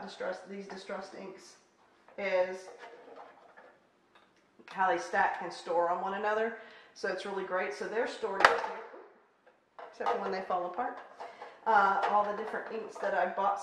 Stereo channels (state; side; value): identical; both; correlation 1.00